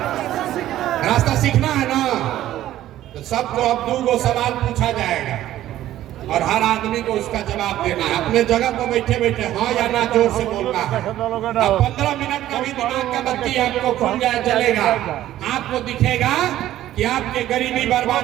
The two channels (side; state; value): left; quieter; 13.4 dB